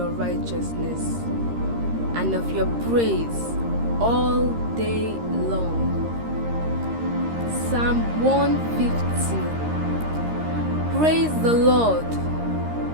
righteousness and of your praise all day long. Psalm 150. Praise the Lord.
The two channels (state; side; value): late; left; 13 ms